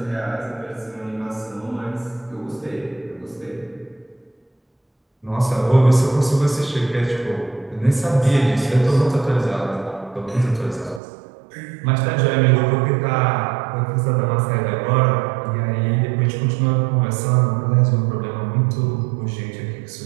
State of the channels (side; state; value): left; drops out; at 11.0 s